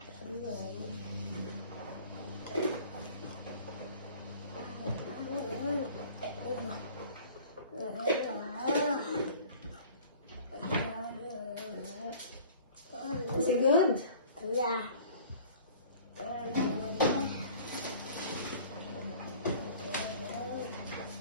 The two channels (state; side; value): inverted; both; correlation -0.47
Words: Is it good? Yeah.